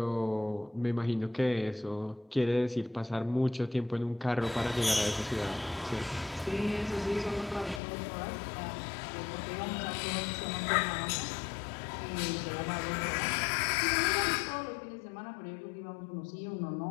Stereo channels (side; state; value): right; drops out; at 7.8 s